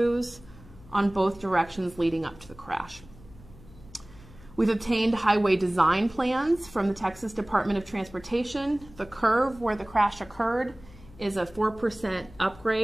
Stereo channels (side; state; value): left; noise; hum, 21 dB below the sound